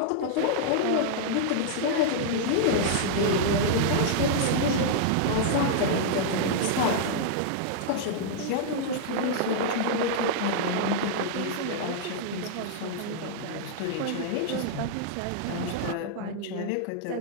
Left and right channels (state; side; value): different; both; correlation -0.01